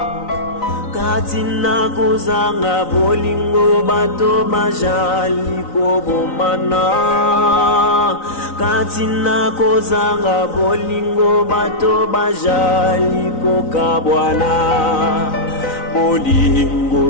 Katina kozanga bolingo bato bazali kobomana Katina kozanga bolingo bato bazali kokabwana Bolingo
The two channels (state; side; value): late; right; 3.9 ms